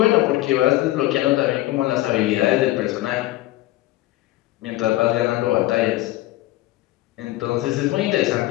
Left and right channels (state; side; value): quieter; right; 17.0 dB